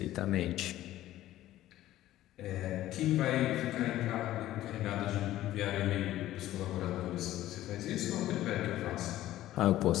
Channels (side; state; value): right; quieter; 14.4 dB